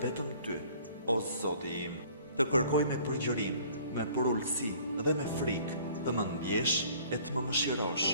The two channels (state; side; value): inverted; both; correlation -0.53